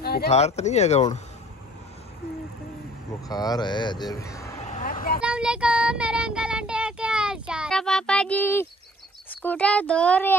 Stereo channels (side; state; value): both; normal; correlation 0.54